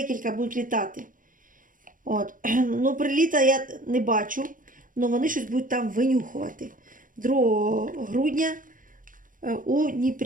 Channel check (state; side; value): late; left; 0.39 ms